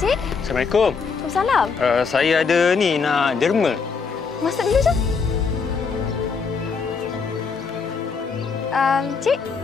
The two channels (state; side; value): quieter; right; 5.3 dB